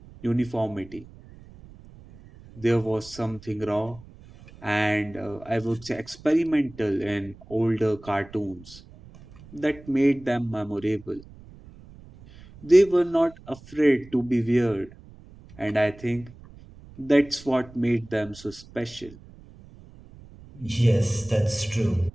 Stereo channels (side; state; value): right; noise; rumble, 21 dB below the sound